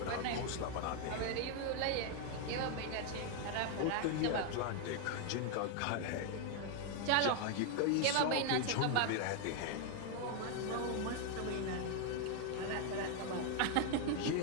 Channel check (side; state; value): both; different; correlation 0.00